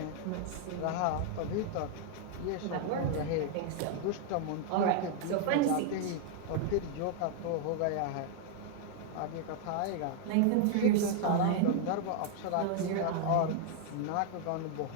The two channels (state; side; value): different; both; correlation 0.00